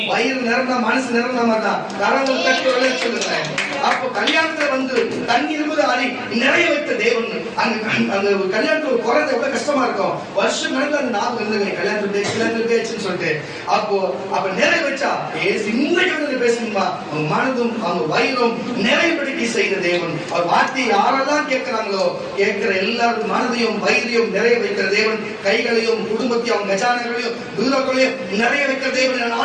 வயிறு நிறந்தா மனசு நிறந்த மாதிரி தான். கரங்கள் தட்டி சொல்லுங்க. அப்போ கல்யாணத்துல வந்து தண்ணி இருபது அடி நிறைய வைத்த தேவன். அங்க கல்யாணத்துல ஒரு குறைந்த எவ்வளவு கஷ்டமா இருக்கும். வருஷம் கணக்கு அந்த ஞாபகம் இருந்தது, கல்யாணத்துக்கு பேச்சுன்னு சொல்லிட்டு. அப்ப நிறைய வச்சா இன்றைக்கு பேசணுமா, அவங்க மனதும் அவங்க வயிறும் நிறைவுபடுத்தி செய்த தேவன். அவர் வார்த்தையை யாரெல்லாம் கேட்கிறாங்களோ, கேட்கிற எல்லாரும் மனதையும் வயிறையும் நிறைய வைக்கிற தேவன். கைகளையும் குடும்பத்தையும் அவங்க கஜானங்களையும் தூரங்களையும் நிறைய வைக்கிற தேவன்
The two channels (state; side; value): identical; both; correlation 1.00